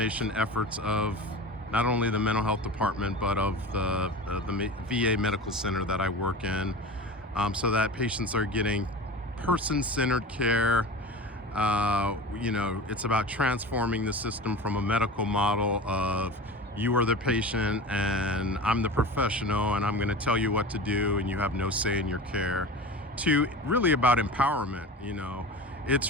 efforts of not only the mental health department, but of the VA medical center that I work in, so that patients are getting person-centered care. It's about transforming the system from a medical model of you are the patient and I'm the professional and I'm going to tell you what to do and you have no say in your care, to really about empowerment. It's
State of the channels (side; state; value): both; normal; correlation 0.33